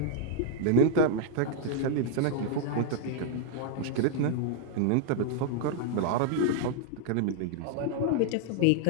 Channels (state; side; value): different; both; correlation 0.00